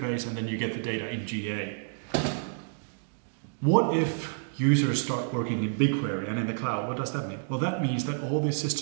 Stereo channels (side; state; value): left; silent; digital silence